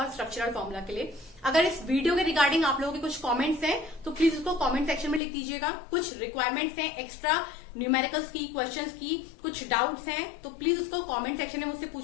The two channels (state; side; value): drops out; right; at 5.2 s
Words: स्ट्रक्चरल फॉर्मूला के लिए। अगर इस वीडियो के रिगार्डिंग आप लोगों के कुछ कमेंट्स हैं तो प्लीज उसको कमेंट सेक्शन में लिख दीजिएगा। कुछ रिक्वायरमेंट्स हैं एक्स्ट्रा न्यूमेरिकल्स की, क्वेश्चंस की, कुछ डाउट्स हैं तो प्लीज उसको कमेंट सेक्शन में मुझसे